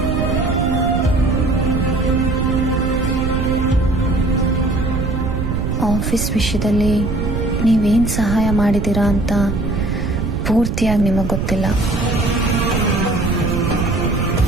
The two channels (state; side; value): noise; right; rumble, 2 dB below the sound